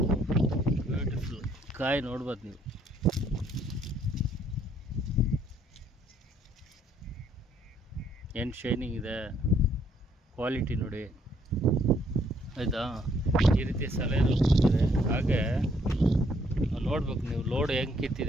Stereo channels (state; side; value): normal; both; correlation 0.67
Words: ಬ್ಯೂಟಿಫುಲ್. ಕಾಯಿ ನೋಡ್ಬೋದು ನೀವು. ಏನು ಶೈನಿಂಗ್ ಇದೆ, ಕ್ವಾಲಿಟಿ ನೋಡಿ ಆಯಿತಾ. ಈ ರೀತಿ ಸಲಹೆ ಕೊಡ್ತಾರೆ. ಹಾಗೆ ನೋಡ್ಬೇಕು ನೀವು ಲೋಡ್ ಹೆಂಗೆ